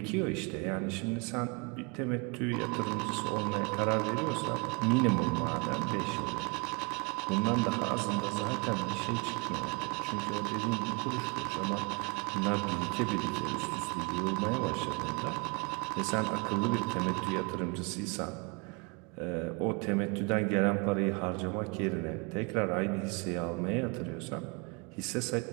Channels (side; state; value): left; quieter; 31.3 dB